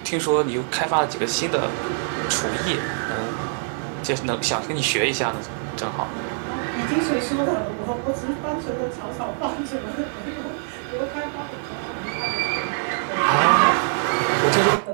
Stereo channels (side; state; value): left; silent; digital silence